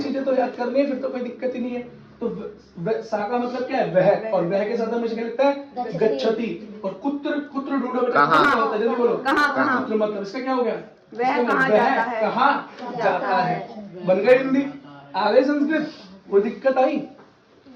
चीजें तो याद करनी है, फिर तो कोई दिक्कत ही नहीं है। तो सा का मतलब क्या है, वह, और वह के साथ हमेशा क्या लगता है, गच्छति। और कुत्र, कुत्र ढूंढो बेटा, कहाँ होता है, जल्दी बोलो। कहाँ, कुत्र मतलब इसका क्या हो गया, वह कहाँ जाता है, कहाँ जाता है। बन गई हिंदी, आ गई संस्कृत, कोई दिक्कत आई।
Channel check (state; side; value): identical; both; correlation 1.00